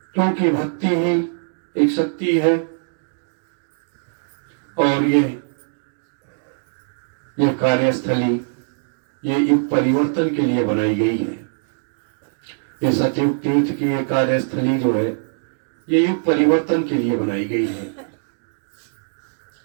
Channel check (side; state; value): left; silent; digital silence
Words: क्योंकि भक्ति ही एक शक्ति है और ये यह कार्यस्थली ये युग परिवर्तन के लिए बनाई गई है। ये सतयुग तीर्थ की ये कार्यस्थली जो है ये युग परिवर्तन के लिए बनाई गई है।